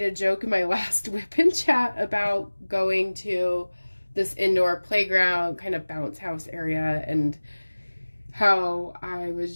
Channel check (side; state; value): both; inverted; correlation -1.00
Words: a joke in my last WIP and Chat about going to this indoor playground, kind of bounce house area, and how I